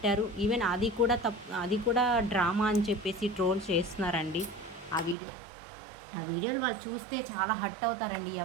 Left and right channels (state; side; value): drops out; left; at 5.2 s